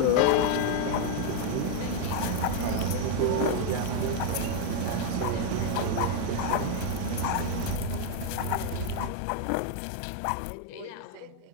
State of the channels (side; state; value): both; different; correlation 0.00